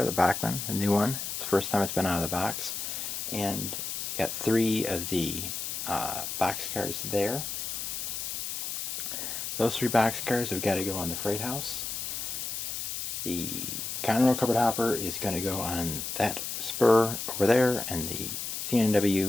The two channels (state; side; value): noise; left; hiss, 4 dB below the sound